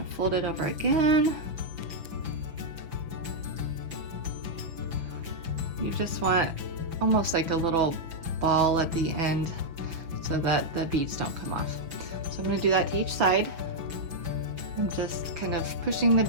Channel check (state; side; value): late; left; 5.9 ms